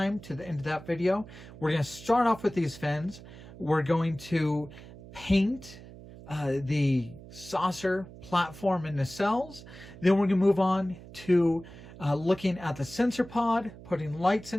to the end of that video. We're going to start off with these fins. We're going to paint the saucer, platform, and nacelles. Then we're going to move on to looking at the sensor pod, putting lights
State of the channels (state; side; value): noise; right; hum, 17 dB below the sound